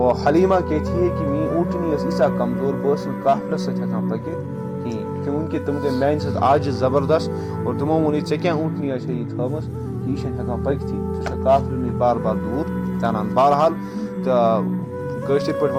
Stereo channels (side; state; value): both; identical; correlation 1.00